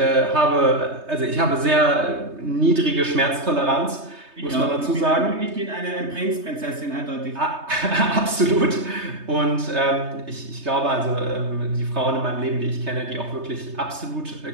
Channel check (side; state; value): left; late; 3.2 ms